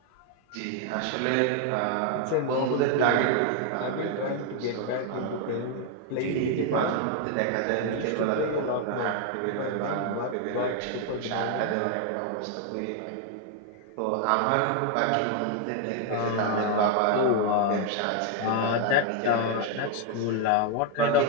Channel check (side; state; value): both; different; correlation 0.01